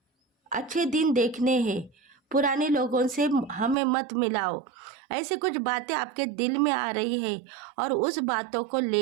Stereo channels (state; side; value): drops out; left; at 3.8 s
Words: अच्छे दिन देखने हैं। पुराने लोगों से हमें मत मिलाओ। ऐसे कुछ बातें आपके दिल में आ रही है और उस बातों को